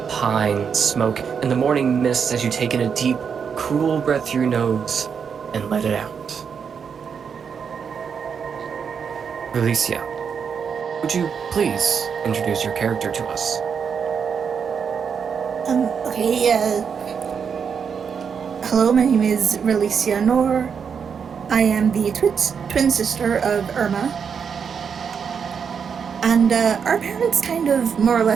Pine, smoke, and the morning mist as you take in a deep, cool breath through your nose and let it out. Relicia, would you please introduce your character to us? Okay, hello, my name is Relicia Nor. I am the twin sister of Irma. And, our parents kind of more or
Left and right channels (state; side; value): quieter; left; 6.7 dB